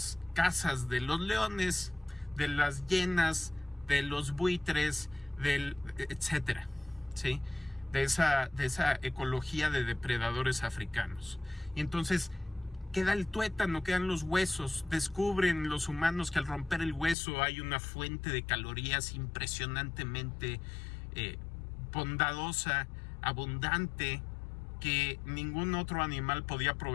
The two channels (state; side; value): drops out; right; at 17.2 s